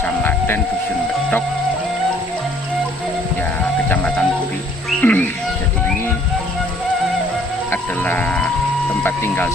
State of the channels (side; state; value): both; normal; correlation 0.60